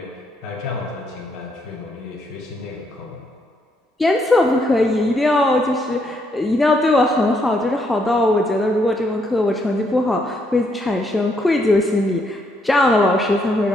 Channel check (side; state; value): both; normal; correlation 0.74